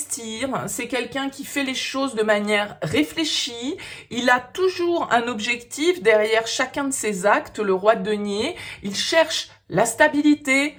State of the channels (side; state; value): both; identical; correlation 1.00